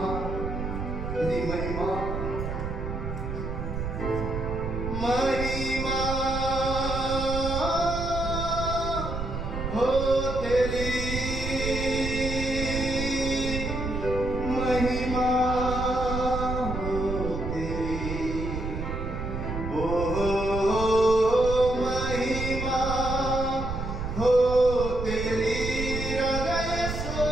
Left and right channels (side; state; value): right; noise; rumble, 4 dB below the sound